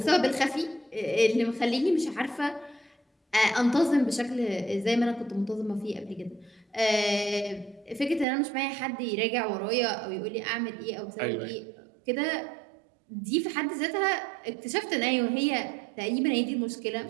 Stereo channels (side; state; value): left; drops out; at 8.2 s